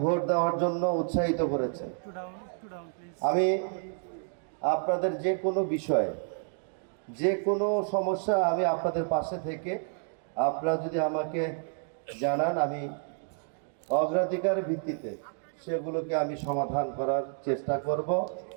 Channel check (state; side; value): silent; left; 58 dB below the other